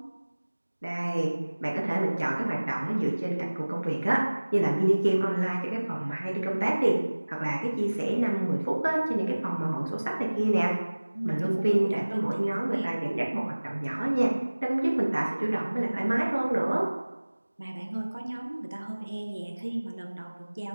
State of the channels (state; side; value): inverted; both; correlation -1.00